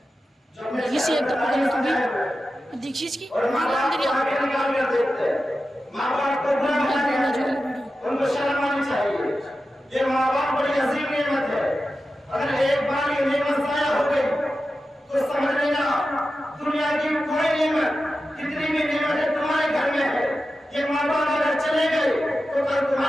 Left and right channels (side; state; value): both; normal; correlation 0.92